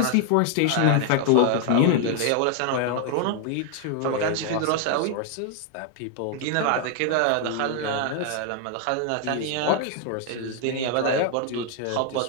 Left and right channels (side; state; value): both; different; correlation 0.00